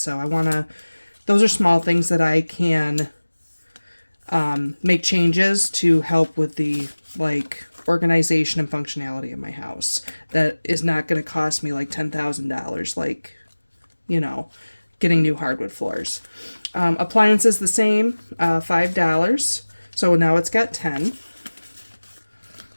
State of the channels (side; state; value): both; inverted; correlation -1.00